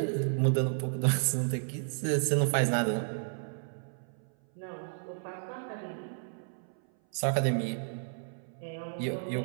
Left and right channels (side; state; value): left; silent; 56 dB below the other